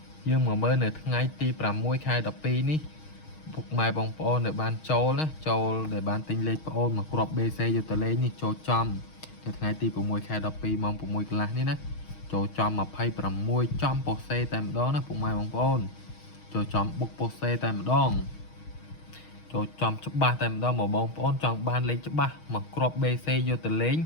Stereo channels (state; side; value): late; right; 6.4 ms